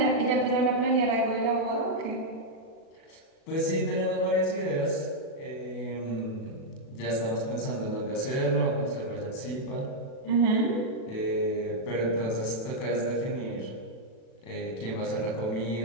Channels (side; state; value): right; late; 37 ms